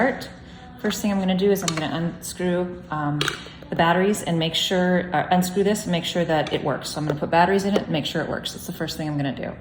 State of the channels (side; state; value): both; identical; correlation 1.00